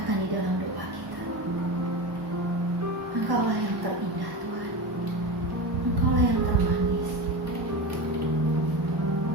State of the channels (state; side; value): late; left; 1.1 ms